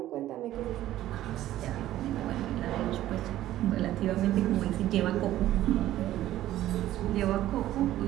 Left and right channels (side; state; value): left; quieter; 13.8 dB